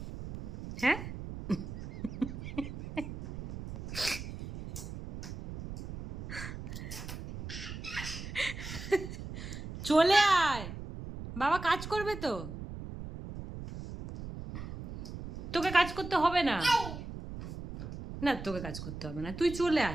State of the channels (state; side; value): noise; right; rumble, 9 dB below the sound